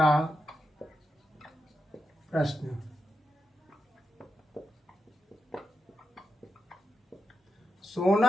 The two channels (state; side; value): normal; both; correlation 0.88